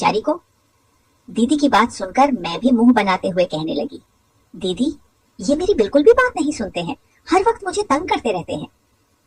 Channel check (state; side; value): identical; both; correlation 1.00